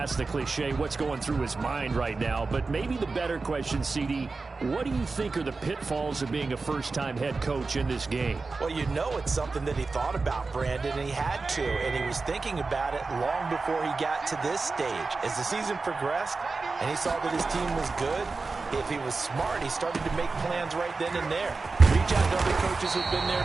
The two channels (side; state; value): left; quieter; 4.0 dB